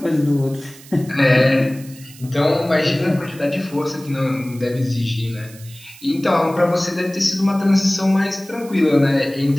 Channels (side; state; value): right; noise; hiss, 21 dB below the sound